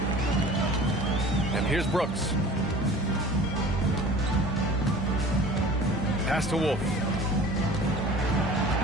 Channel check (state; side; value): normal; both; correlation 0.43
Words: And here's Brooks. Pass to Wolf.